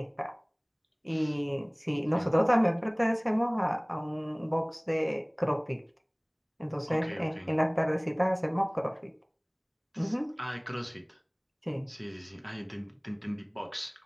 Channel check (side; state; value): both; identical; correlation 1.00